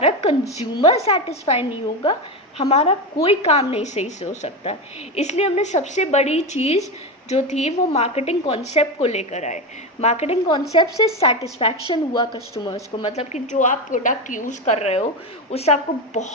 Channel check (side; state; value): both; normal; correlation 0.16